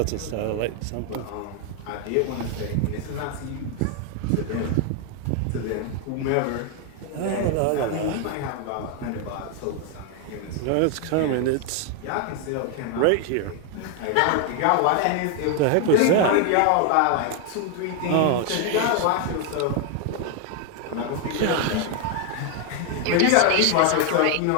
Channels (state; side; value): different; both; correlation 0.00